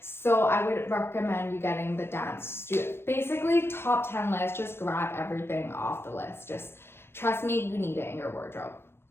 So I would recommend you getting the Dance Studio. Basically, top 10 list, just grab everything off the list. Just trust me, you need it in your wardrobe.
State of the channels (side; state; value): right; late; 0.12 ms